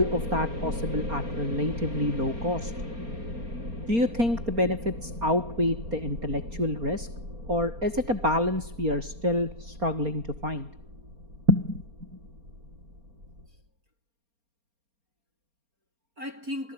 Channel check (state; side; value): late; left; 4.3 ms